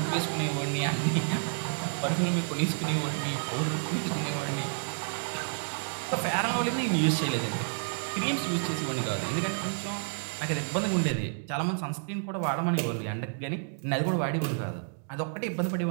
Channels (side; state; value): left; silent; 56 dB below the other